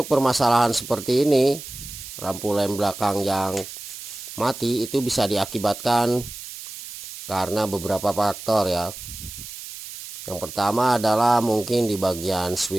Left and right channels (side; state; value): right; noise; hiss, 11 dB below the sound